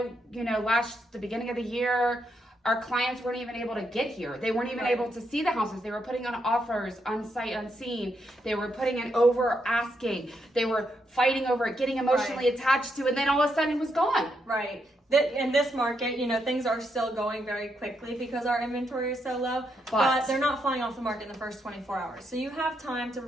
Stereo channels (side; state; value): both; normal; correlation 0.80